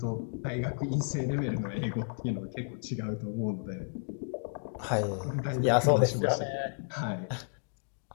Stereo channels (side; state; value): right; silent; digital silence